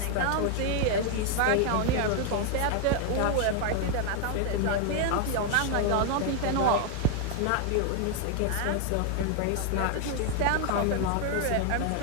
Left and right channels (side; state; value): both; different; correlation 0.00